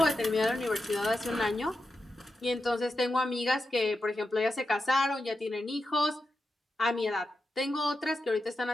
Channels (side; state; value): both; normal; correlation 0.89